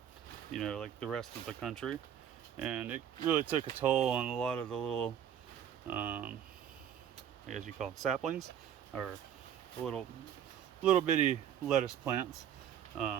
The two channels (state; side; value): quieter; left; 9.6 dB